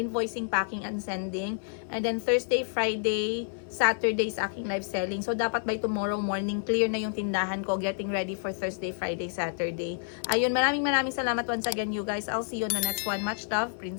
packing, and sending. And then Thursday, Friday, Saturday is aking live selling. So dapat by tomorrow morning, clear na yung tindahan ko, getting ready for Thursday, Friday, Saturday. Ayun, maraming salamat once again you guys. I'll see you on the next one. Much love,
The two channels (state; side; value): silent; right; digital silence